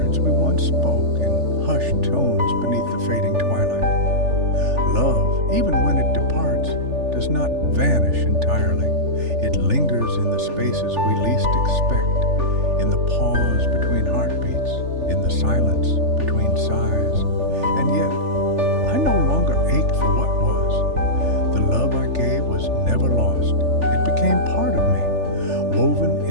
we once spoke in hushed tones beneath the fading twilight. Love, even when it departs, does not vanish entirely. It lingers in the spaces we least expect, in the pause between heartbeats, in the silence between sighs. And yet, I no longer ache for what was. The love I gave was never lost. It became part of me, woven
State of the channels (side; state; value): left; late; 3.4 ms